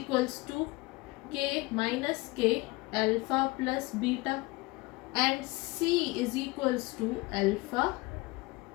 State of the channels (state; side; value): quieter; right; 23.1 dB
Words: to k minus k alpha plus beta, and c is equals to alpha